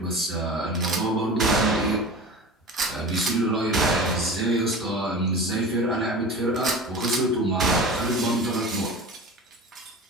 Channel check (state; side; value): normal; both; correlation 0.34